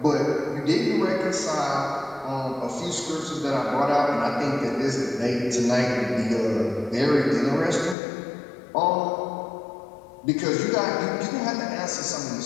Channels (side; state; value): right; drops out; at 8.0 s